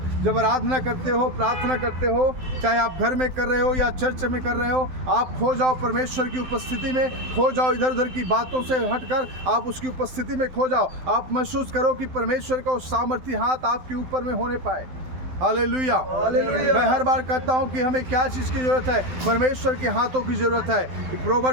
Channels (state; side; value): late; left; 12 ms